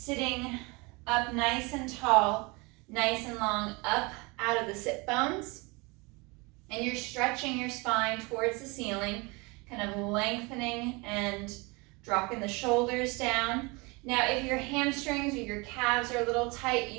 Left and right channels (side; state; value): left; quieter; 26.9 dB